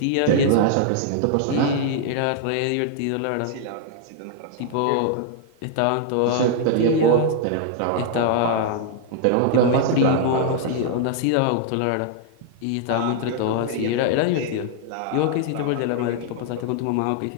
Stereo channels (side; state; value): both; different; correlation 0.00